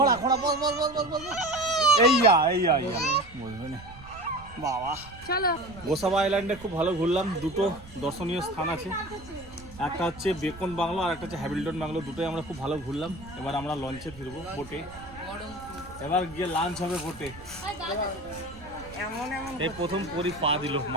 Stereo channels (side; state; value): right; noise; rumble, 19 dB below the sound